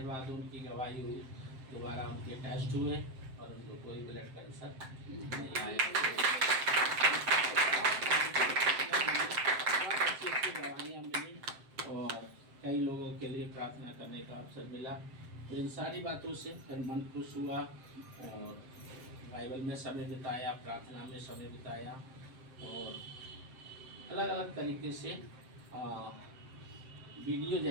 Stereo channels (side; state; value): left; late; 7.7 ms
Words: उनकी गवाही हुई, दोबारा उनके टेस्ट हुए और उनको कोई ब्लड कैंसर नहीं आया। अच्छी गवाहियाँ मिली और कई लोगों के लिए प्रार्थना करने का अवसर मिला। तो इन सारी बातों से फिर मन खुश हुआ, और बाइबल में समय बिताया, प्रार्थना में समय बिताया, और अलग अलग तरीके से वीडियो